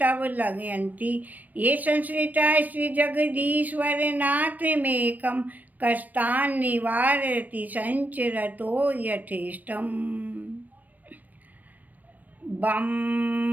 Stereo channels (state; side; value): late; left; 0.083 ms